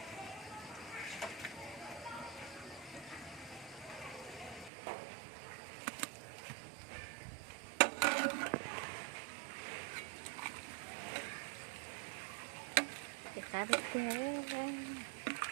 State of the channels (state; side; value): drops out; left; at 4.7 s